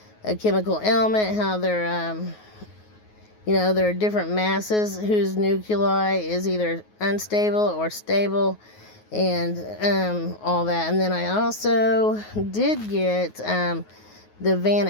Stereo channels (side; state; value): right; late; 9.4 ms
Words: a chemical element, how they're, there are different masses whose nuclei is either unstable or stable, and all that. And then I also did get the Van